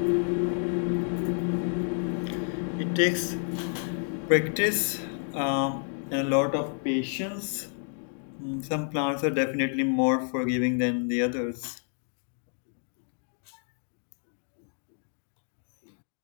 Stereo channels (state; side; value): silent; right; 58 dB below the other